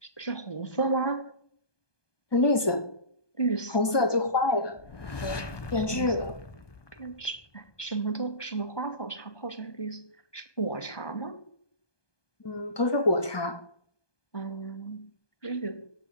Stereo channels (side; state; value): right; late; 1.2 ms